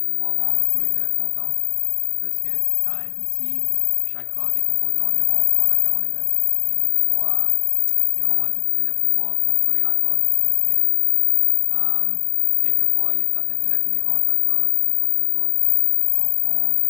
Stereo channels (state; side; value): silent; right; 60 dB below the other